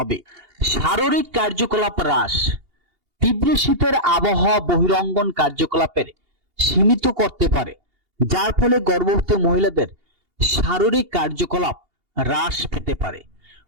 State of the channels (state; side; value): late; left; 2.8 ms